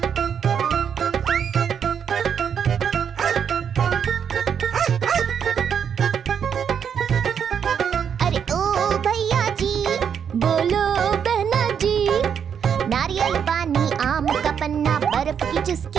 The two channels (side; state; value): left; quieter; 7.7 dB